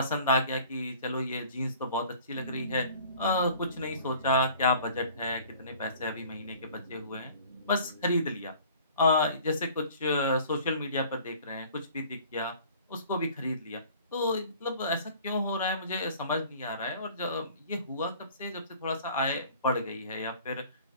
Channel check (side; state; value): both; inverted; correlation -0.49